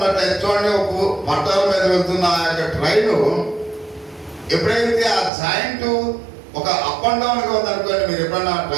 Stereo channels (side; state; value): left; drops out; at 5.3 s